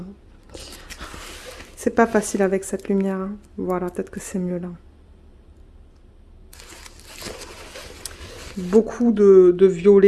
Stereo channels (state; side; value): identical; both; correlation 1.00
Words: C'est pas facile avec cette lumière. Hein. Voilà, peut-être que c'est mieux là. Beaucoup de